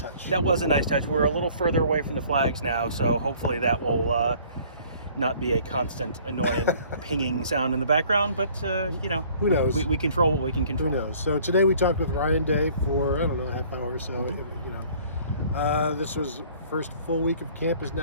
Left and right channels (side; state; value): both; inverted; correlation -0.54